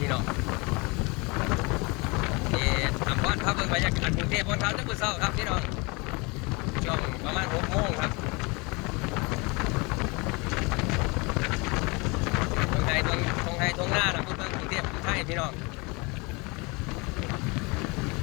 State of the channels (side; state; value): right; quieter; 27.8 dB